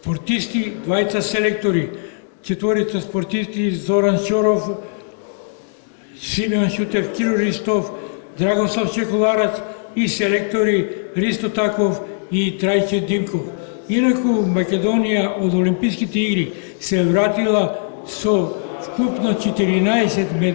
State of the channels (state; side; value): silent; right; digital silence